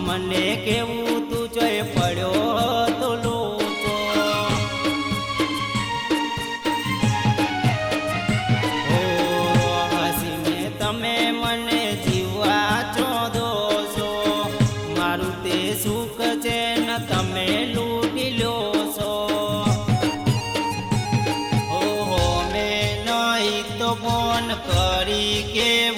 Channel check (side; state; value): both; identical; correlation 1.00